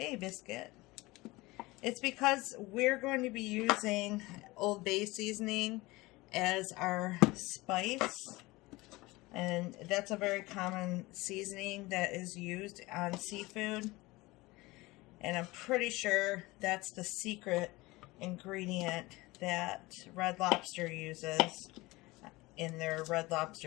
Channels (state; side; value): quieter; right; 21.2 dB